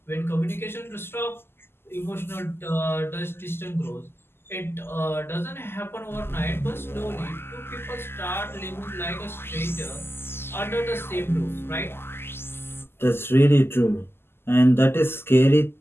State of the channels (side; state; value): right; late; 0.12 ms